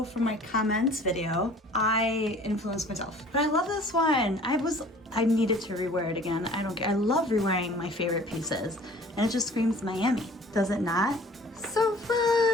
from my comments video. I influenced myself, but I love this one. I needed to rewear it again. I don't care. I love rewearing my favorite pieces, and it just screams Miami. Does it not? So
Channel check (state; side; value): normal; both; correlation 0.49